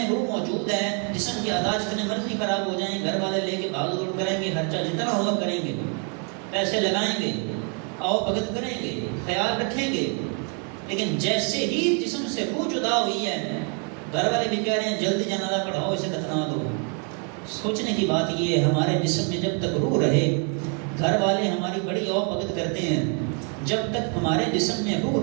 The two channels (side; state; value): left; quieter; 39.7 dB